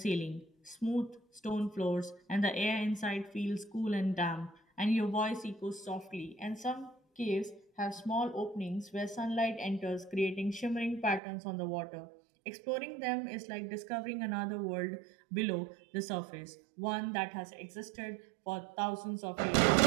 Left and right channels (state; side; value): drops out; left; at 11.2 s